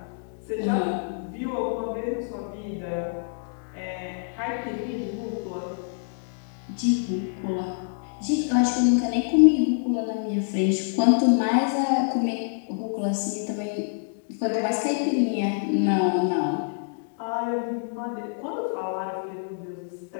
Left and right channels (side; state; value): right; silent; digital silence